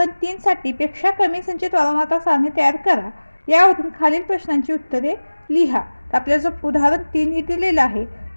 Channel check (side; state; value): both; inverted; correlation -1.00